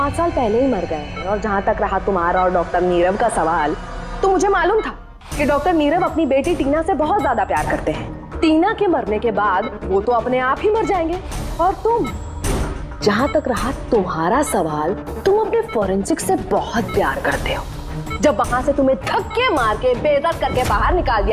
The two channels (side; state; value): both; identical; correlation 1.00